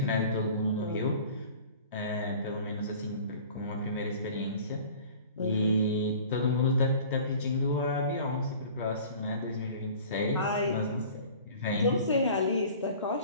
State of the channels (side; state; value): both; inverted; correlation -0.45